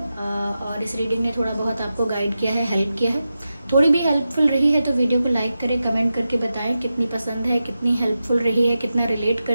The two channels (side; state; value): both; inverted; correlation -0.91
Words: इस रीडिंग ने थोड़ा बहुत आपको गाइड किया है, हेल्प किया है। थोड़ी भी हेल्पफुल रही है तो वीडियो को लाइक करें, कमेंट करके बताएं कितनी पसंद है, कितनी हेल्पफुल रही है, कितना रिलेट